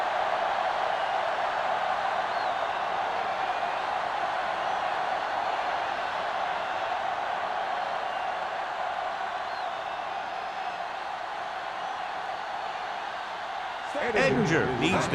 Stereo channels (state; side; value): identical; both; correlation 1.00